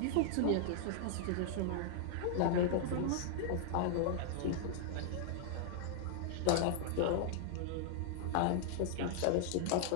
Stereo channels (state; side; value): different; both; correlation -0.01